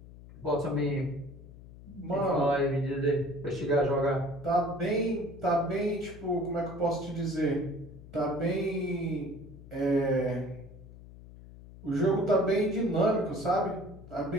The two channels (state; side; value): noise; left; hum, 18 dB below the sound